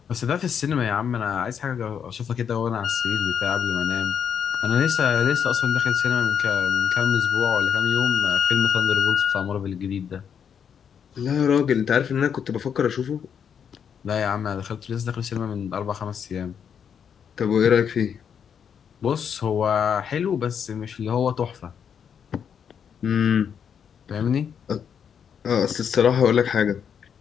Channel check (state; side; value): quieter; right; 7.7 dB